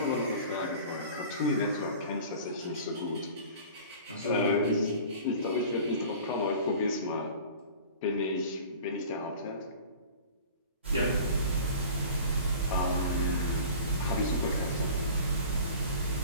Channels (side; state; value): both; inverted; correlation -0.42